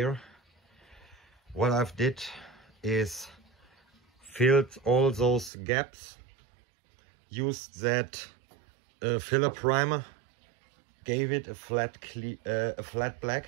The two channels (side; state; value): left; drops out; at 5.5 s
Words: What I've did is filled all those gaps, used that filler primer, gave it a flat black,